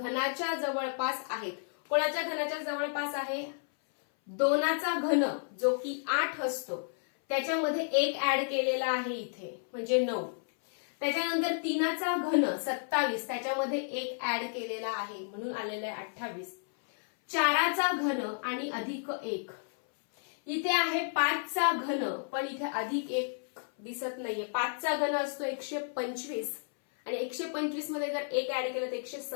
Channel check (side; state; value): right; silent; 57 dB below the other